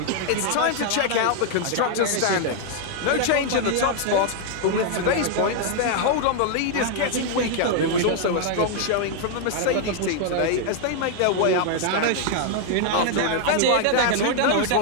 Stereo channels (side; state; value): both; different; correlation 0.00